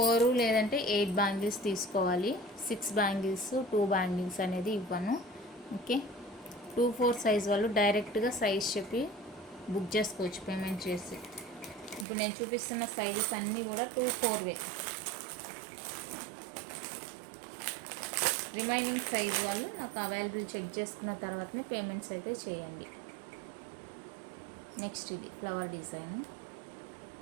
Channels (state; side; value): drops out; left; at 12.1 s